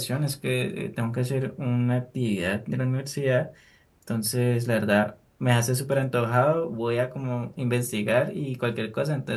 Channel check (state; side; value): identical; both; correlation 1.00